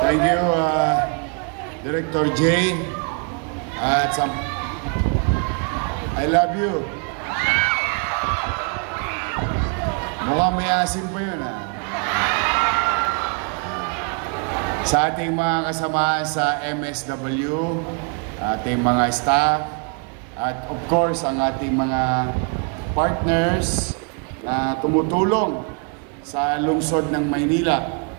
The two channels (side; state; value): left; quieter; 38.2 dB